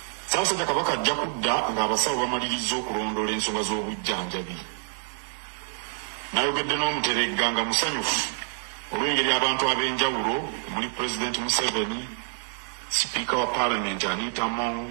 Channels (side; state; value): left; silent; digital silence